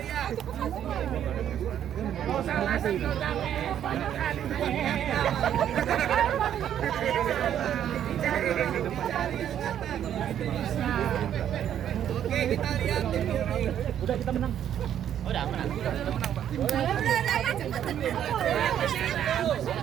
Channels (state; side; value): quieter; left; 10.1 dB